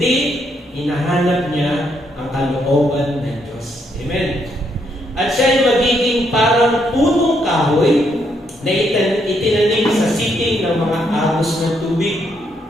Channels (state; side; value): normal; both; correlation 0.75